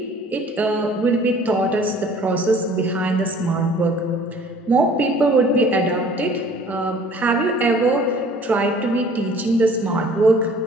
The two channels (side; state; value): both; normal; correlation 0.51